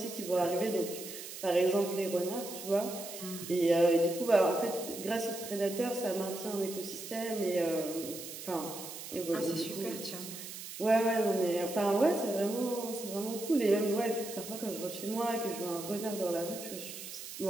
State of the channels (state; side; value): noise; right; hiss, 10 dB below the sound